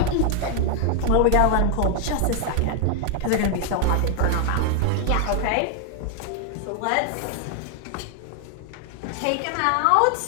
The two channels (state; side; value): different; both; correlation 0.00